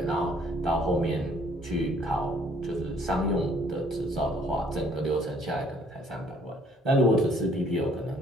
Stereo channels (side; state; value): both; normal; correlation 0.62